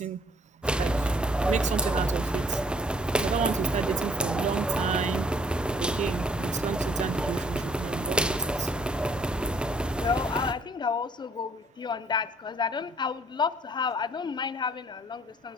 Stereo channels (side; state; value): both; normal; correlation 0.60